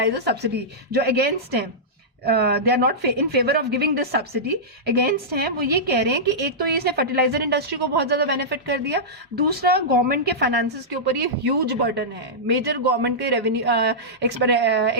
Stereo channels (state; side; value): normal; both; correlation -0.13